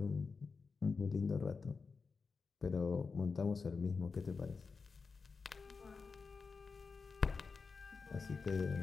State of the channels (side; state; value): right; quieter; 4.8 dB